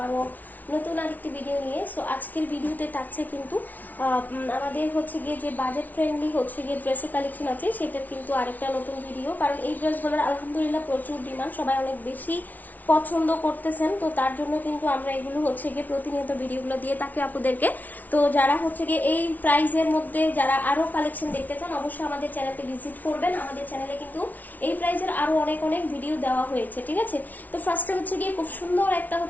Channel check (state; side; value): late; right; 0.078 ms